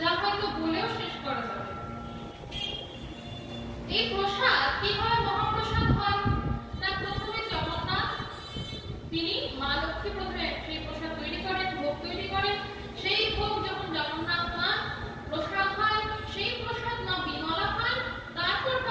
হয়তো বলেও শেষ করা যাবে। এই প্রসাদ কিভাবে মহাপ্রসাদ হয়? না, প্রথমে জগন্নাথ তিনি, মা লক্ষ্মী প্রথমে সেই প্রসাদ তৈরি করেন, ভোগ তৈরি করেন। সেই ভোগ যখন জগন্নাথ পান, প্রসাদ হয়, সেই প্রসাদ মা বিমলা পান, তারপর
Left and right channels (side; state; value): both; identical; correlation 1.00